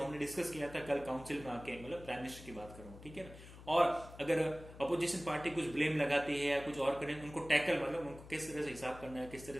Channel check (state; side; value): noise; left; hum, 16 dB below the sound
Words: डिस्कस किया था कल काउंसिल में आके, मतलब प्राइम मिनिस्टर की बात कर रहा हूँ, ठीक है ना। और अगर अपोजिशन पार्टी कुछ ब्लेम लगाती है या कुछ और करें, उनको टैकल, मतलब उनको किस तरह से हिसाब करना है, किस तरह